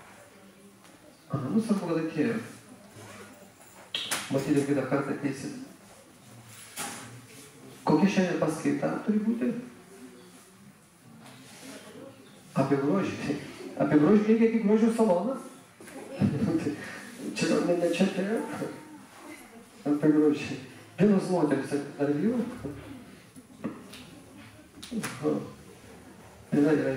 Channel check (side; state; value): both; identical; correlation 1.00